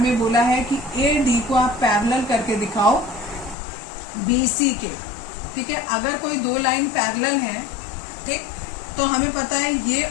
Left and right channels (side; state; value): right; drops out; at 3.6 s